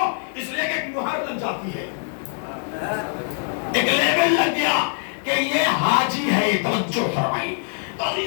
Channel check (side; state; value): right; silent; 63 dB below the other